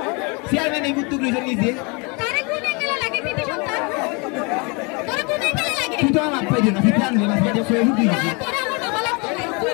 চেয়ারম্যান এই উদ্যোগ রয়েছে নিজে তুই তো আমার পাই না সেটা আনবে না সেটা ফেসবুক দিয়ে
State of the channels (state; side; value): quieter; right; 30.7 dB